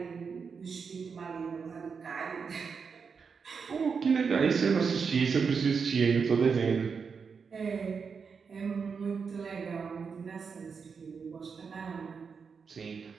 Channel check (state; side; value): quieter; left; 5.7 dB